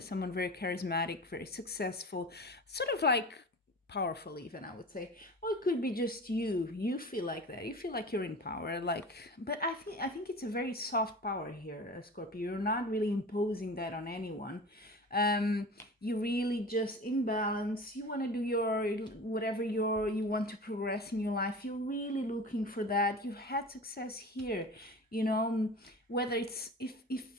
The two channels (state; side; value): normal; both; correlation 0.35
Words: very charismatic, very successful, sort of like powerful even, I would say. Or it could be just you feel like that, you feel like you're in power, but I think it's a very soft power here, Scorpio. You're not really imposing that on anyone. You really just in balance. You want to do your whatever you want to progress in your life. You're really looking for that. You've had success here, you know, whether it's